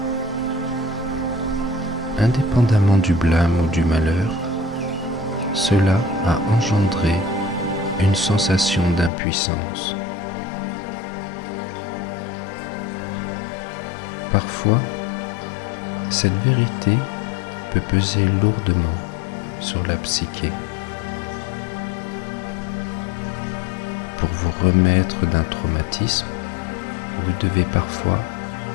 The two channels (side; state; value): right; drops out; at 9.1 s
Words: Indépendamment du blâme ou du malheur, cela a engendré une sensation d'impuissance. Parfois, cette vérité peut peser lourdement sur la psyché. Pour vous remettre d'un traumatisme, vous devez parfois